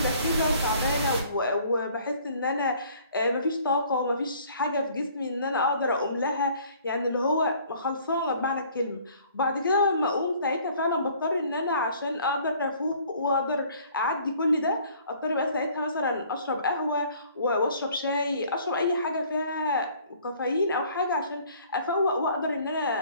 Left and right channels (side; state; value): both; inverted; correlation -0.56